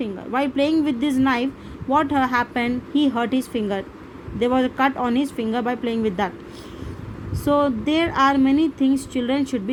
While playing with this knife, what happened? He hurt his finger. There was a cut on his finger by playing with that. So there are many things children should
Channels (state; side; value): identical; both; correlation 1.00